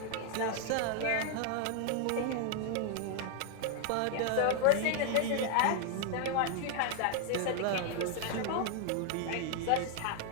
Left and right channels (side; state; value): both; different; correlation 0.00